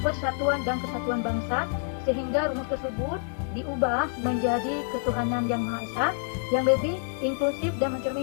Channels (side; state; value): right; silent; 60 dB below the other